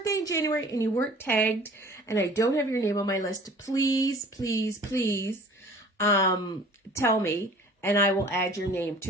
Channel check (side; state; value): both; normal; correlation 0.47